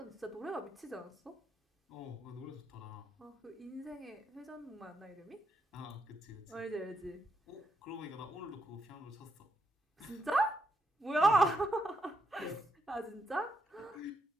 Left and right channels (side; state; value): both; normal; correlation 0.80